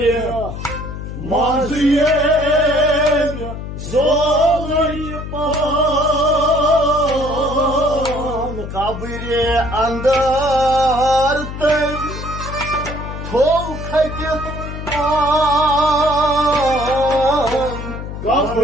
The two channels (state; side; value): noise; left; hum, 8 dB below the sound